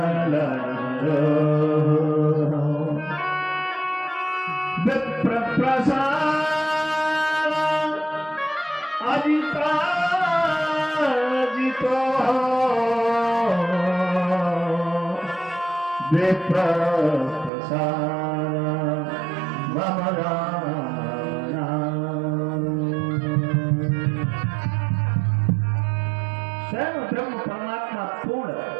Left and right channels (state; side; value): drops out; left; at 17.5 s